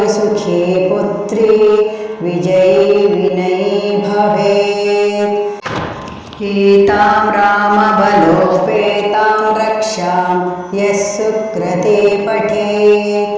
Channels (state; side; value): identical; both; correlation 1.00